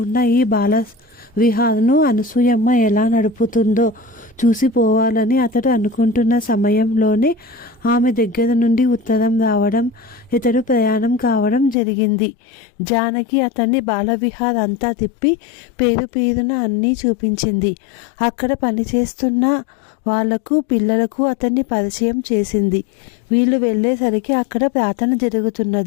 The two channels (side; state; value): right; drops out; at 11.8 s